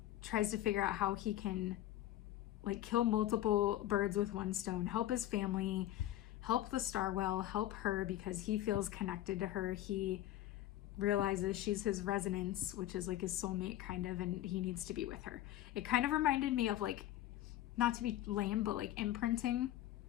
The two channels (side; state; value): right; quieter; 13.8 dB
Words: tries to figure out how he can like kill multiple birds with one stone, help his family, help the Star Well, help her because he feels connected to her. He realizes she's his resonance, which is like his soulmate kind of, and he needs to be with her. It kind of reminded me of like, not to be lame, but like imprinting